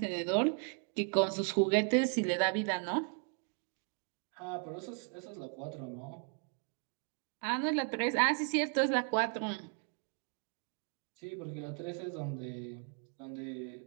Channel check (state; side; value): quieter; left; 38.5 dB